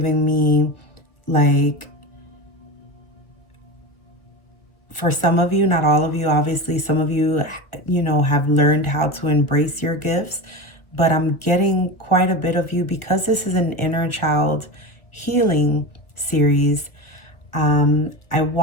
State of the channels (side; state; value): right; late; 1.4 ms